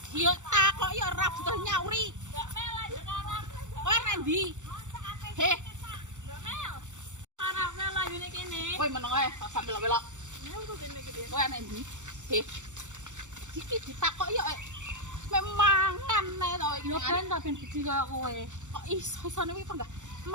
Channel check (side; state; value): left; late; 0.85 ms